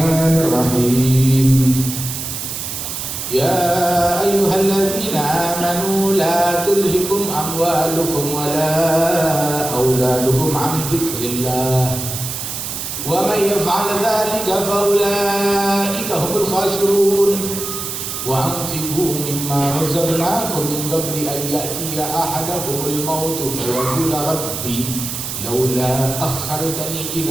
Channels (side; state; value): right; noise; hiss, 5 dB below the sound